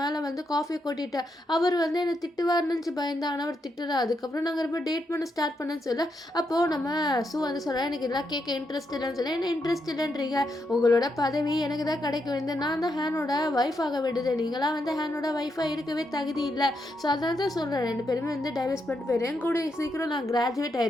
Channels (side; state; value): both; normal; correlation 0.81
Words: வந்து காஃபியை கொட்டிட்டேன், அவர் வந்து என்னை திட்டுவார்னு பயந்தேன், ஆனால் அவர் திட்டுறா, அதுக்கப்புறம் நாங்கள் ரொம்ப டேட் பண்ண ஸ்டார்ட் பண்ணேன்னு சொல்ல அப்போது நம்ம சூ வந்து சொல்கிறேன் எனக்கு இதெல்லாம் கேட்க இன்ட்ரெஸ்ட் இல்லைன்னு சொல்ல என்ன இன்ட்ரெஸ்ட் இல்லைன்றீங்க, உங்களோட பதவி எனக்கு தான் கிடைக்க வேண்டியது, நான் தான் ஹேனோட ஒய்ஃப் ஆக வேண்டியது, நீங்களாம் வந்து ஹேனோட ஒய்ஃபாக இருக்கவே தகுதி இல்லை. ஸோ அதனால தான் சொல்கிறேன் 2 பேருமே வந்து டைவர்ஸ் பண்ணிட்டு போயிடுவேன், கூட சீக்கிரம் நான் கிராஜுவேட்